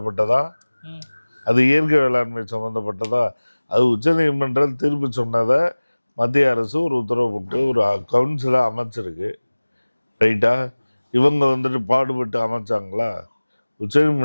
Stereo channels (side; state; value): both; inverted; correlation -1.00